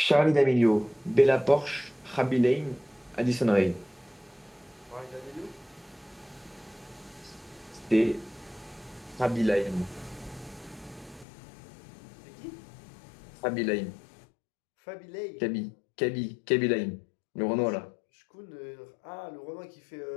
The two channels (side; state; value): right; drops out; at 11.2 s